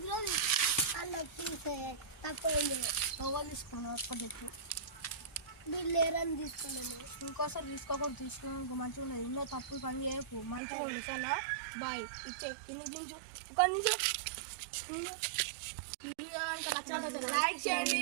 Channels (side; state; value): left; drops out; at 10.6 s